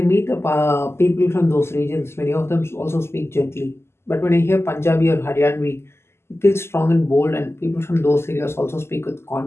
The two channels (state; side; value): late; right; 0.12 ms